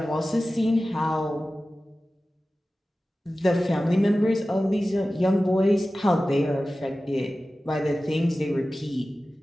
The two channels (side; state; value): both; normal; correlation 0.95